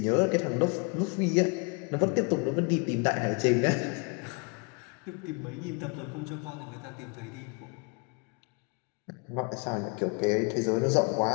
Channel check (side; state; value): right; quieter; 32.7 dB